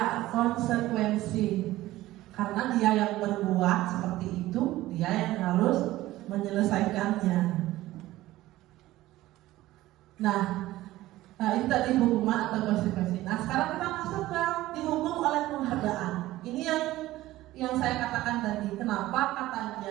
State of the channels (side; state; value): left; quieter; 16.3 dB